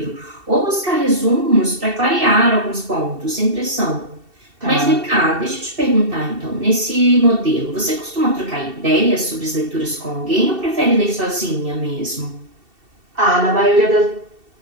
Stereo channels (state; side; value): late; left; 2.7 ms